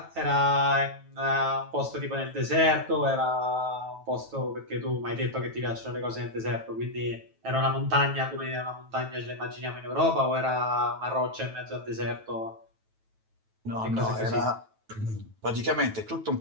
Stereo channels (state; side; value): late; left; 9.2 ms